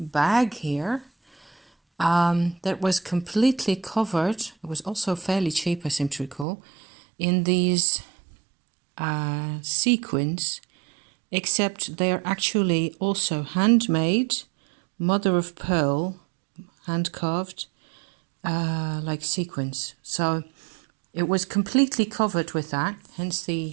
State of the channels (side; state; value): left; drops out; at 6.5 s